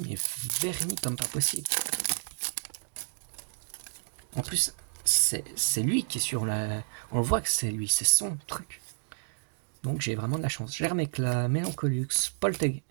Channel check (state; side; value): silent; left; digital silence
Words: mais verni comme pas possible. En plus, c'est lui qui est sur la... On le voit que c'est lui, c'est son truc. Donc j'ai vraiment de la chance. Germecla, Mélancolux, Polteg,